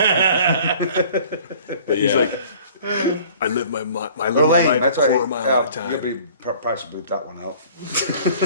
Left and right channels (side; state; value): both; inverted; correlation -0.49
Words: but yeah I live my Or life lame. That's a why. quarter mile at a You'll time. be probably bleep that one out.